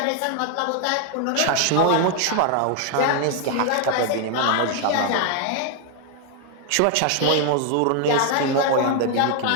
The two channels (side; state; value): both; different; correlation 0.00